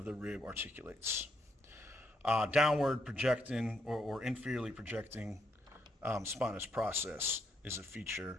the rib articulates. Downward projecting or inferiorly projecting spinous process is a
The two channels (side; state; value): both; normal; correlation 0.77